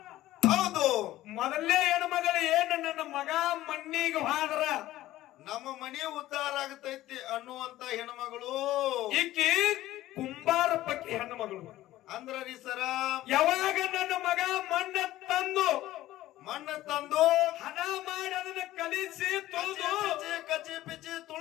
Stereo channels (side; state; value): right; quieter; 15.2 dB